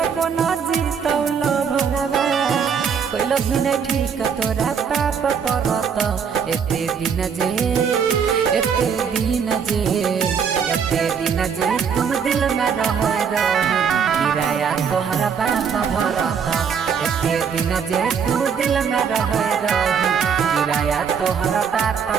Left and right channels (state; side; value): quieter; left; 6.8 dB